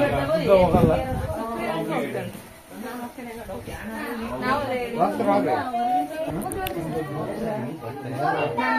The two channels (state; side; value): identical; both; correlation 1.00